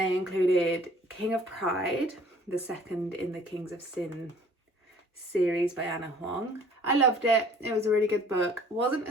included King of Pride, the second in the Kings of Sin series by Anna Huang. I loved it. It was a really good book. Wasn't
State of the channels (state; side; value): normal; both; correlation 0.54